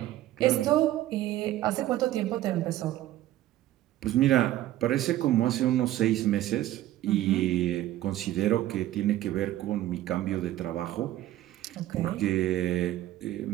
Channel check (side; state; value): left; quieter; 14.3 dB